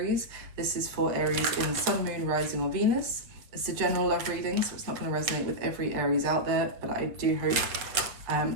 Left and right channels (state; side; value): late; left; 7.7 ms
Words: This is for Aries in Sun, Moon, Rising or Venus. It's a general love reading, so it's not going to resonate with every Aries out there, but I do hope